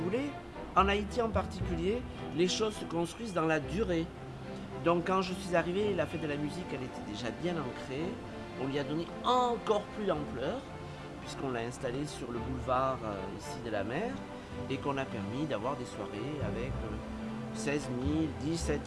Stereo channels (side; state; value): both; identical; correlation 1.00